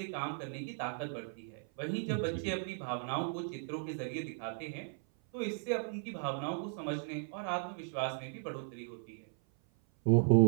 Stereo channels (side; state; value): left; silent; 53 dB below the other